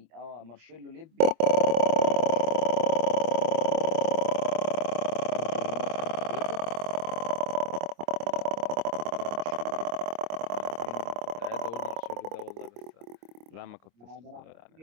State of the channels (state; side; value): late; left; 25 ms